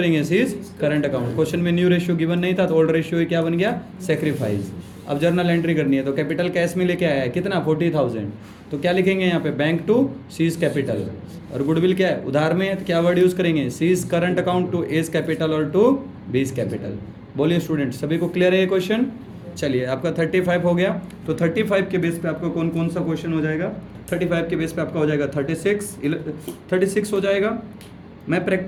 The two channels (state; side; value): identical; both; correlation 1.00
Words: सीज करंट अकाउंट। क्वेश्चन में न्यू रेशियो गिवन नहीं था तो ओल्ड रेशियो क्या बन गया, सेक्रीफाइस। अब जर्नल एंट्री करनी है तो कैपिटल कैश में लेके आया है कितना 40,000, तो क्या लिखेंगे यहाँ पे, बैंक टू सीज कैपिटल। और गुडविल क्या है, उधार में है तो क्या वर्ड यूज करेंगे, C's current account to A's capital और टू बीज कैपिटल। बोलिए स्टूडेंट, सभी को क्लियर है ये क्वेश्चन। चलिए आपका 35 हो गया, तो 35 के बेस पे आपका कौन कौन सा क्वेश्चन हो जाएगा, 35 के बेस पे आपका हो जाएगा 36 हो जाएगा। मैं